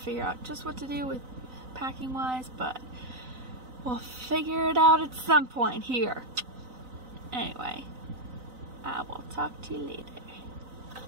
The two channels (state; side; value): late; left; 3.9 ms